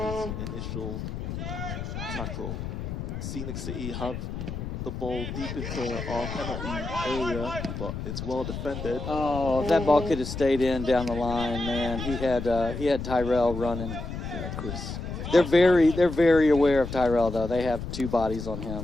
from his initial tackle. Scenic City have the ball deep into our penalty area, but it's well defended. Oh, if that ball could have stayed in down the line, man. He had Tyrell running. Yeah, Chris. They're very aware of Tyrell though. They have two bodies on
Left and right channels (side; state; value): left; noise; rumble, 6 dB below the sound